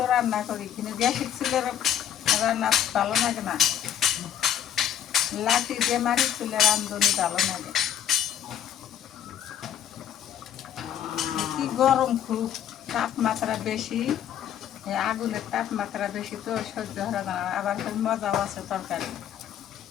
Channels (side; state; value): right; quieter; 10.0 dB